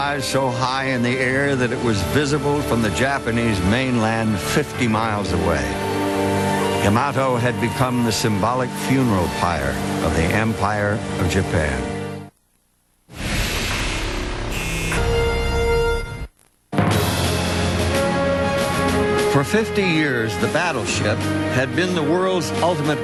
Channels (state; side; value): identical; both; correlation 1.00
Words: so high in the air that it was visible from the Japanese mainland 50 miles away. Yamato had become the symbolic funeral pyre of the Empire of Japan. For 50 years, the battleship had been the world's ultimate